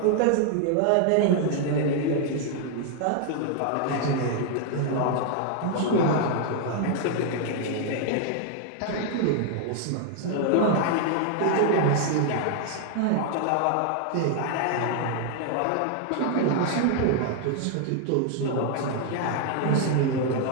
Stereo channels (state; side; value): different; both; correlation 0.00